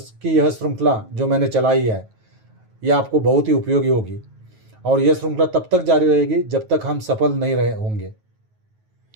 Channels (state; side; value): late; left; 9.3 ms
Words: की यह श्रृंखला जो मैंने चलाई है, यह आपको बहुत ही उपयोगी होगी और यह श्रृंखला तब तक जारी रहेगी जब तक हम सफल नहीं रहे होंगे।